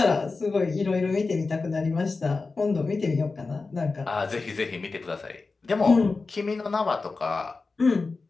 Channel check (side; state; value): right; quieter; 4.0 dB